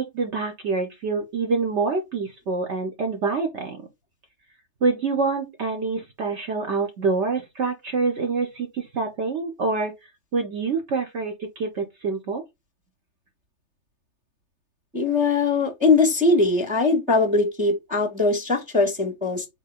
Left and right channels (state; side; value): late; left; 3.3 ms